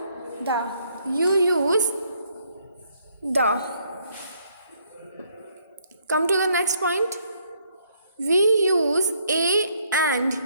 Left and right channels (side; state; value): both; inverted; correlation -0.69